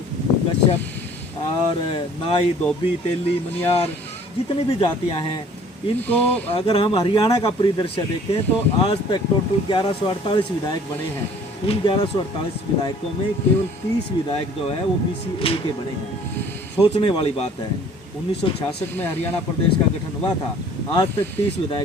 कश्यप और नाई, धोबी, तेली, मनियार, जितनी भी जातियां हैं, इनको अगर हम हरियाणा का परिदृश्य देखें तो आज तक टोटल 1148 विधायक बने हैं। उन 1148 विधायकों में केवल 30 विधायक जो है वो BCA के बने हैं। सोचने वाली बात है। 1966 में हरियाणा प्रदेश का गठन हुआ था, आज तक 30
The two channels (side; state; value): both; normal; correlation 0.53